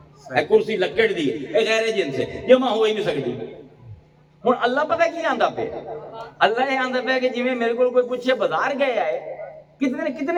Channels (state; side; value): identical; both; correlation 1.00